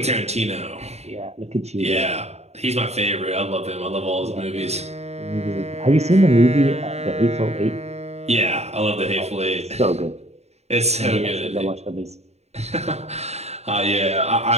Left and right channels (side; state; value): left; late; 0.31 ms